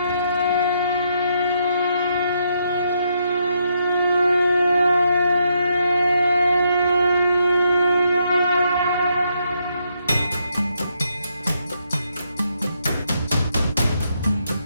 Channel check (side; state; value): both; inverted; correlation -0.76